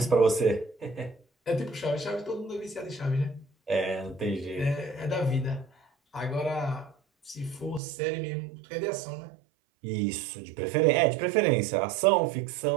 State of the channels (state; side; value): drops out; left; at 7.8 s